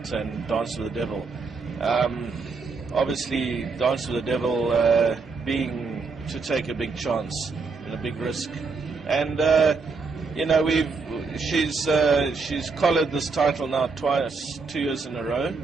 and Dance with the Devil. Obviously, Dance with the Devil being to take a big chance and a big risk, and you know, she's collared this title now twice, 2 years in a row.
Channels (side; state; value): left; quieter; 4.5 dB